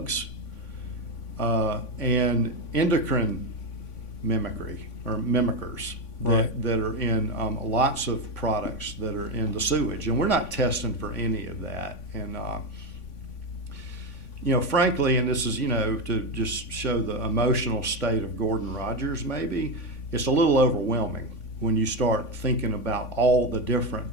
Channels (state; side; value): late; right; 3.5 ms